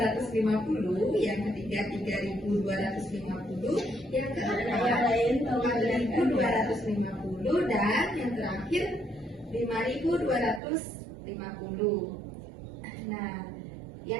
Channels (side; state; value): left; drops out; at 10.6 s